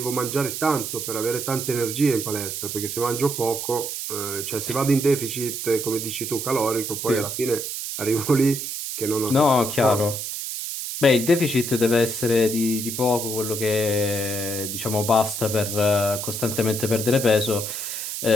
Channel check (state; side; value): noise; right; hiss, 5 dB below the sound